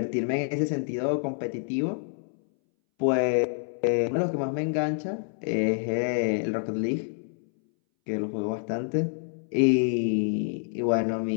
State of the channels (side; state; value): right; silent; 60 dB below the other